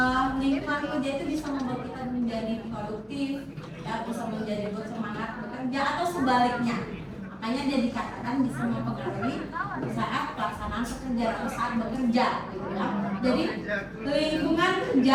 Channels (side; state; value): both; identical; correlation 1.00